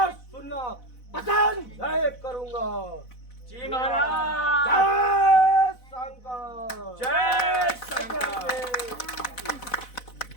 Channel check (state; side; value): late; right; 4.0 ms